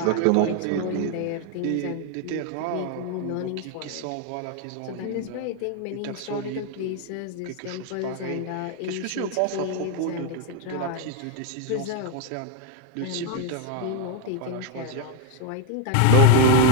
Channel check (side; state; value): both; different; correlation 0.01